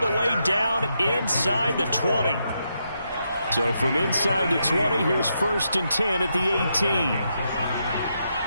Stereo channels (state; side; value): inverted; both; correlation -0.82